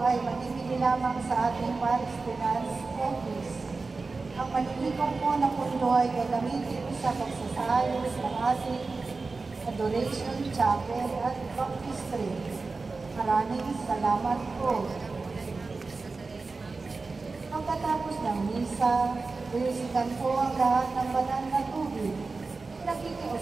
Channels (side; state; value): left; quieter; 4.0 dB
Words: ay manibili lamang sa ating Paris Finance Office. Ang malilikong po na pundo ay gagamitin sa pagsasayos ng ating Adoration Chapel at Baptistry. Maraming salamat po. Pagkatapos ng misa, iusikan po ang lahat ng banal na tubig.